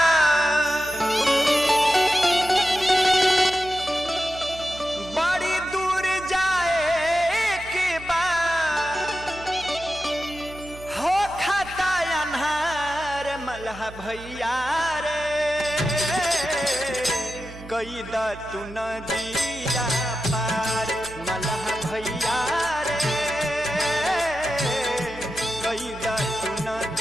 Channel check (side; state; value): right; noise; hum, 16 dB below the sound